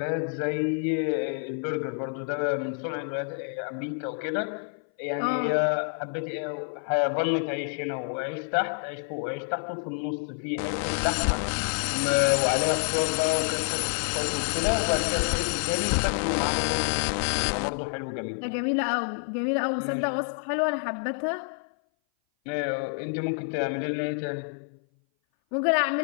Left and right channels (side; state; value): right; silent; 57 dB below the other